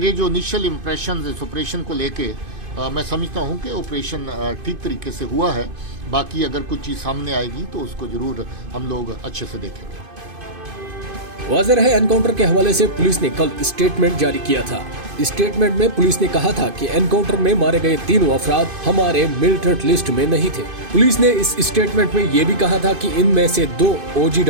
जो इनिशियल इम्प्रेशन इस ऑपरेशन को लेके मैं समझता हूँ कि ऑपरेशन ठीक तरीके से हुआ है। बाकी अगर कुछ चीज़ सामने आएगी तो उसको जरूर हम लोग अच्छे से देखेंगे। वाज़ेह रहे, एनकाउंटर के हवाले से पुलिस ने कल स्टेटमेंट जारी किया था। स्टेटमेंट में पुलिस ने कहा था कि एनकाउंटर में मारे गए तीनों अफराद हमारे मिलिटेंट लिस्ट में नहीं थे। पुलिस ने इस स्टेटमेंट में ये भी कहा था कि इनमें से 2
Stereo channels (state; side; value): late; left; 2.5 ms